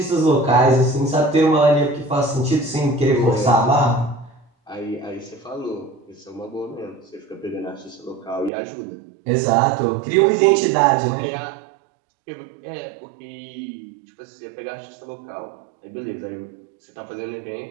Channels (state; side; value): drops out; left; at 8.5 s